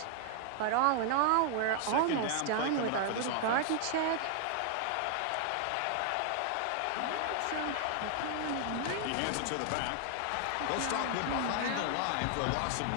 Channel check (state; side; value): different; both; correlation 0.00